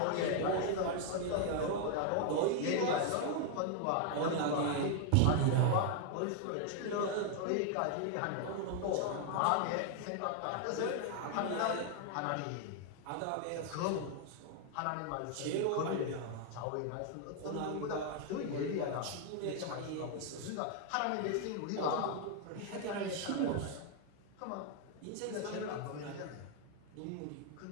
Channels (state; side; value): different; both; correlation 0.00